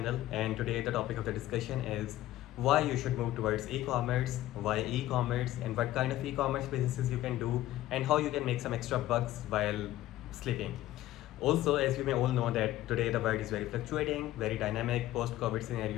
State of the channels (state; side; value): quieter; right; 14.8 dB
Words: and today the topic of the discussion is why you should move towards e-commerce, why e-commerce, and what kind of e-commerce businesses you can do, and how you can make some extra bucks while sleeping. Also, as you may all know that today the world is very fluctuating, very dynamic, post-COVID